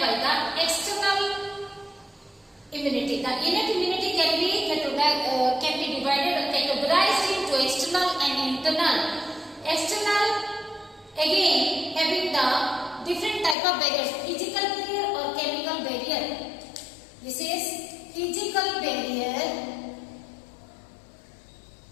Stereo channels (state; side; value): drops out; right; at 13.6 s